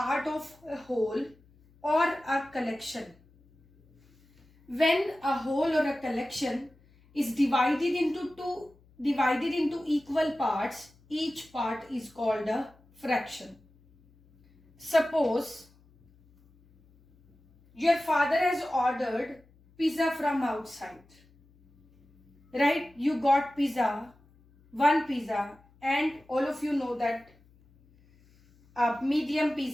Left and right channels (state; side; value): noise; left; hum, 30 dB below the sound